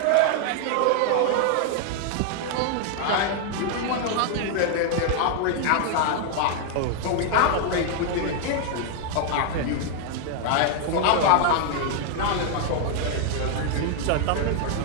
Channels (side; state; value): both; different; correlation 0.00